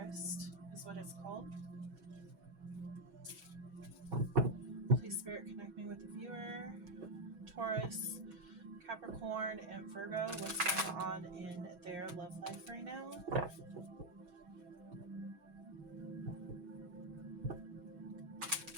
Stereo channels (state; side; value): late; left; 6.2 ms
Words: is what it's called. Please, Spirit, connect me with the viewer. Taurus, Capricorn, and Virgo. What's going on in their love life right now?